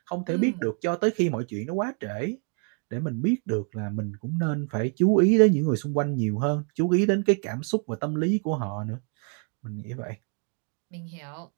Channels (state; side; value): quieter; left; 39.7 dB